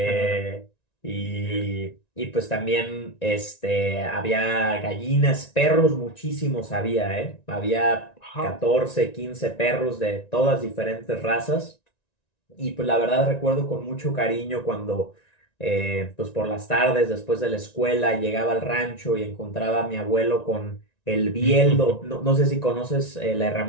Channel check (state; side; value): late; right; 1.9 ms